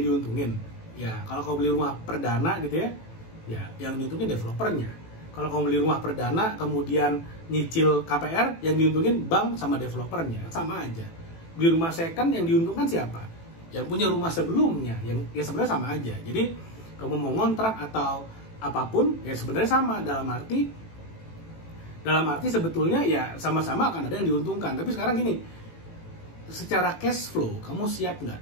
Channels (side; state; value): right; late; 18 ms